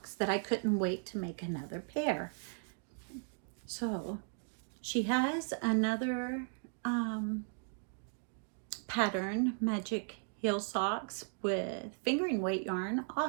that I couldn't wait to make another pair. So she has another pattern, magic heel socks with fingering weight yarn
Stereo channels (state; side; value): silent; left; 53 dB below the other